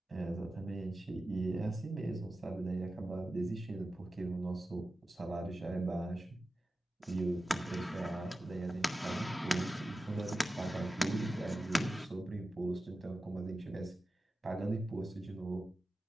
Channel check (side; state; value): both; normal; correlation 0.93